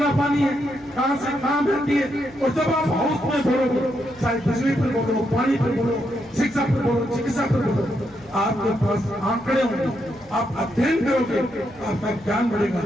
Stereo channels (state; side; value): noise; left; hum, 27 dB below the sound